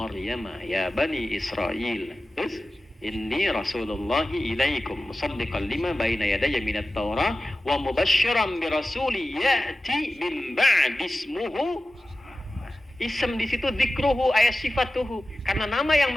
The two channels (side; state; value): both; normal; correlation 0.95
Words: ya bani Israil inni rasulullah ilaikum musaddiqan lima baina yadayya minat Taurah wa mubasysyiran bi rasuli ya'ti min ba'di ismuhu. Ism di situ dzikruhu ayat sifatuhu, karena nama